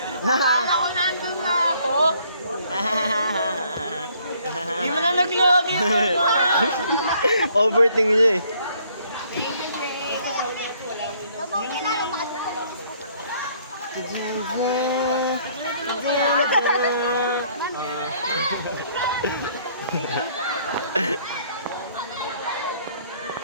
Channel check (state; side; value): inverted; both; correlation -0.63